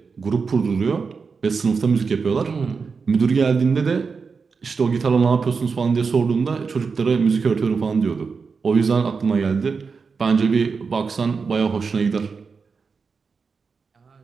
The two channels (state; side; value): quieter; left; 5.1 dB